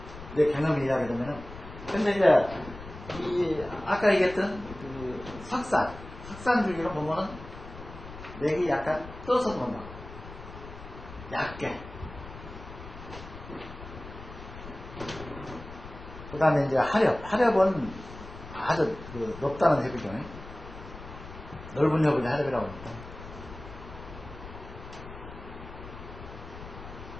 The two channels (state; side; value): noise; left; rumble, 14 dB below the sound